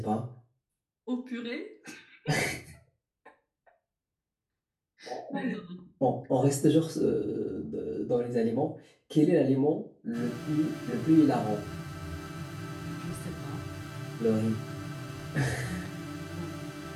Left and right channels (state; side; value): identical; both; correlation 1.00